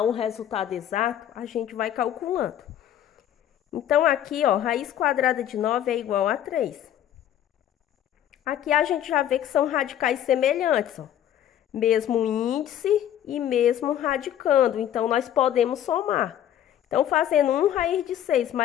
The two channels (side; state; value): right; quieter; 11.0 dB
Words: um resultado exato, a gente vai calculando. Então, aqui, ó, raiz quadrada de 9 é igual a 3. Aqui a gente já vê que são radicais semelhantes, ó. Mesmo índice e mesmo radicando, então nós podemos somar. Então, fazendo 1 raiz de 6